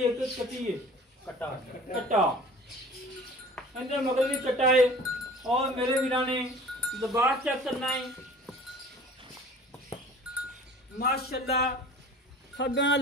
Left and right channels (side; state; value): both; normal; correlation 0.45